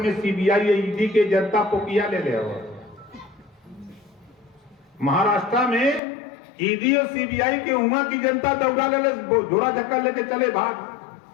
सीबीआई ईडी के जनता पोकिया ले ले, महाराष्ट्र में ईडी और सीबीआई के वहां की जनता दौड़ा ले, झोरा धक्का लेके चले भाग।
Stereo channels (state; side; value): drops out; right; at 6.0 s